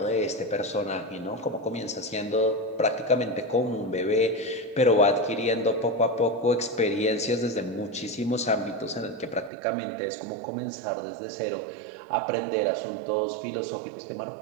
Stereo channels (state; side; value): drops out; left; at 9.5 s